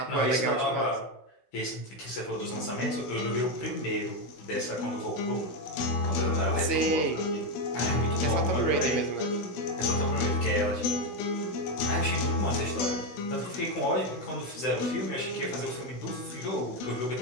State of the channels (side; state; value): right; late; 16 ms